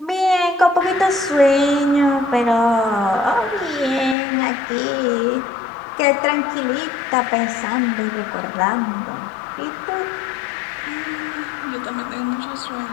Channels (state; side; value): drops out; right; at 4.2 s